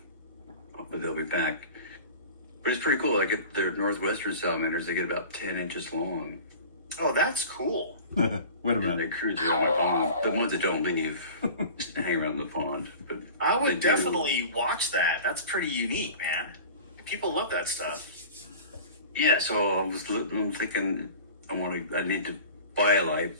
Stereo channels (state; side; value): inverted; both; correlation -0.39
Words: hopefully they'll be back. But it's pretty cool. I get their northwestern salamanders. They get about 10 inches long. Oh, that's cool. Wait a And minute. they cruise around the pond. The ones that don't leave just hang around the pond. But I they would do. definitely watch that. That's pretty unique, man. People love that stuff. Yeah, so I'm thinking I need to buy a light,